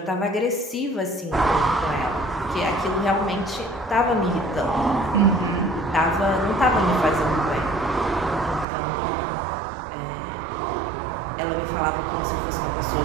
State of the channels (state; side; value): drops out; left; at 8.7 s